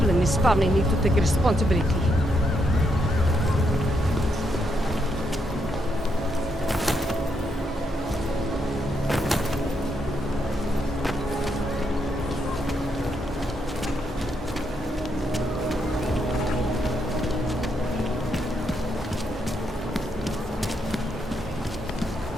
in his family need to take responsibility.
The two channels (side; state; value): both; normal; correlation 0.79